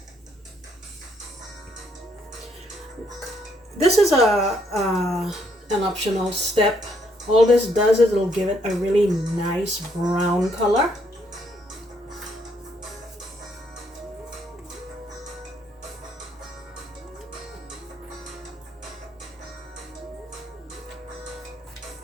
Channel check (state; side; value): normal; both; correlation 0.71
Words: This is an optional step. All this does is it'll give it a really nice brown color.